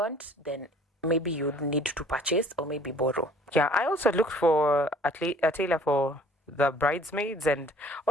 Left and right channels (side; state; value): both; normal; correlation 0.54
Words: then maybe you need to purchase or maybe borrow. Yeah, I also looked for a tailor for the bridesmaids and